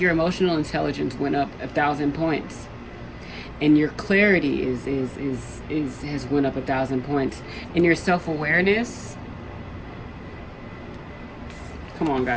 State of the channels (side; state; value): both; identical; correlation 1.00